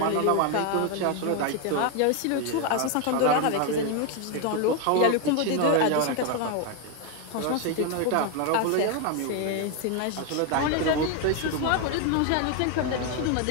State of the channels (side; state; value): both; different; correlation 0.01